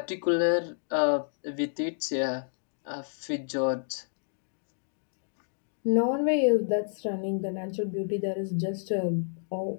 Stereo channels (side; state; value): right; silent; digital silence